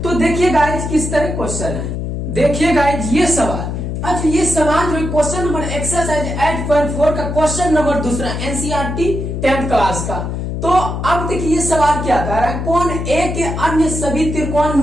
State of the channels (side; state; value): left; noise; hum, 4 dB below the sound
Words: तो देखिए गाइज किस तरह क्वेश्चन है। देखिए गाइज ये सवाल, अच्छा ये सवाल जो क्वेश्चन नंबर एक्सरसाइज 8.4 का क्वेश्चन नंबर दूसरा एनसीईआरटी 10th क्लास का। तो अब देखिए ये सवाल क्या कर रहा है, कौन ए के अन्य सभी